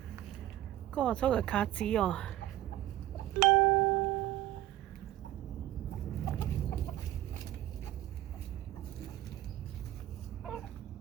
có số cái cá gì à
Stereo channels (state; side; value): quieter; left; 14.1 dB